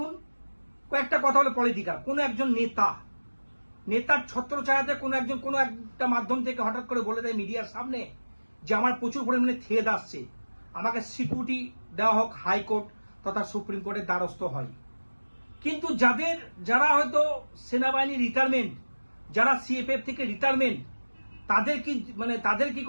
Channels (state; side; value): inverted; both; correlation -1.00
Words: কয়েকটা কথা হলো পলিটিক্যাল, কোনো একজন নেতার ছত্রছায়াতে কোনো একটা মাধ্যম থেকে হঠাৎ করে বলে দেয় মিডিয়ার সামনে যে আমার প্রচুর পরিমাণে থেদ আসছে, আমাকে সিকিউরিটি দেওয়া হোক, হাইকোর্ট তথা সুপ্রিম কোর্টের দ্বারস্থ হয়। কিন্তু যারা হয়তো সেনাবাহিনী রিটায়ারমেন্ট, যারা সিএপিএফ থেকে রিটায়ারমেন্ট, তাদের কি